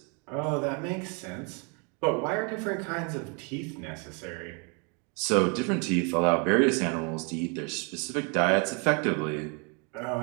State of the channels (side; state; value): left; quieter; 35.0 dB